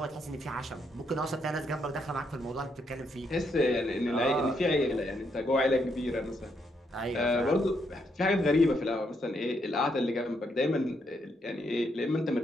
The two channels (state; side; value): normal; both; correlation 0.76